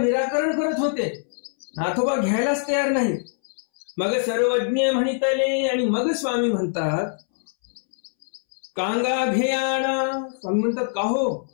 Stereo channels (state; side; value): silent; right; 63 dB below the other